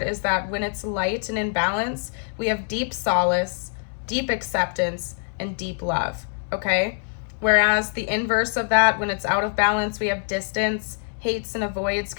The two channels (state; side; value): silent; right; digital silence